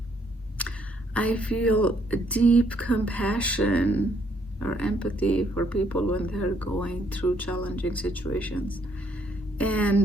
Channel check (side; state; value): both; normal; correlation 0.69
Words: I feel a deep compassion or empathy for people when they're going through challenging situations.